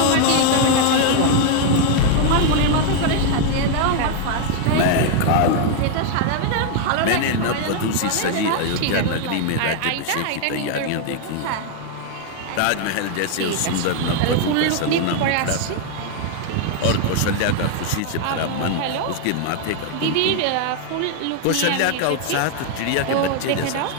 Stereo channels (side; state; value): both; different; correlation 0.00